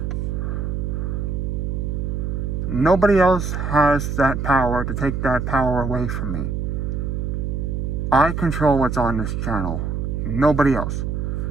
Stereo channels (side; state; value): right; noise; hum, 2 dB below the sound